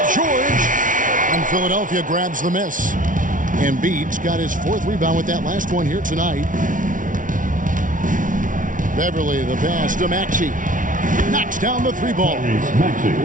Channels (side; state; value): left; late; 0.38 ms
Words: George. And Philadelphia grabs the miss. Embiid's got his 4th rebound with that last one here tonight. Beverley the pass to Maxey. Knocks down the 3-ball.